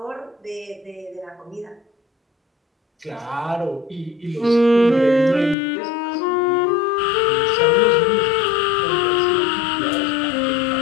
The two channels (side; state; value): right; drops out; at 5.6 s